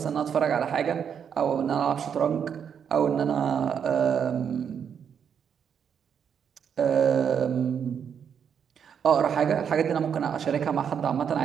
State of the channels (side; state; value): left; quieter; 7.7 dB